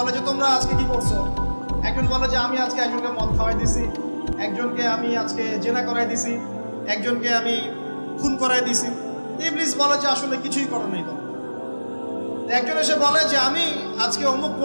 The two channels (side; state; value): both; inverted; correlation -1.00